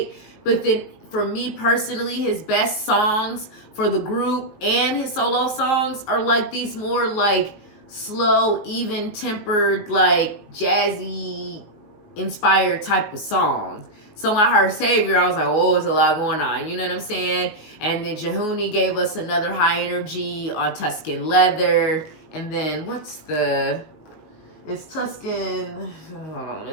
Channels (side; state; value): right; late; 19 ms